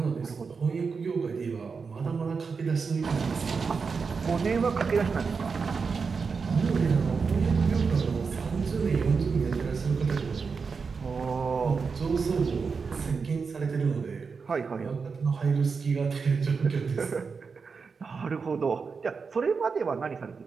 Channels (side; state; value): left; quieter; 5.2 dB